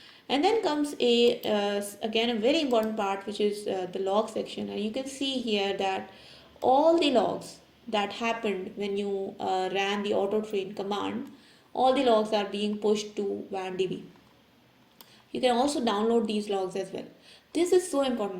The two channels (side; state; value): both; identical; correlation 1.00